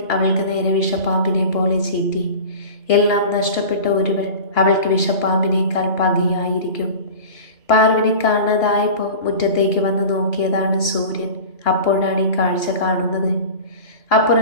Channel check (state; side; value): late; right; 2.8 ms